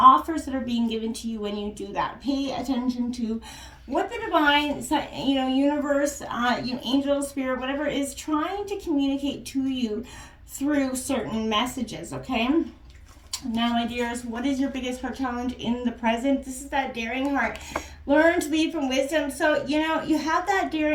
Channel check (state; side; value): identical; both; correlation 1.00